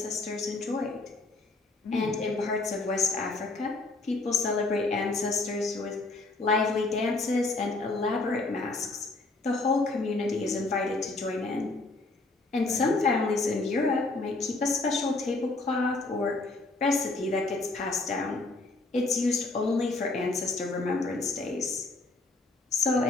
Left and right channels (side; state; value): right; quieter; 3.2 dB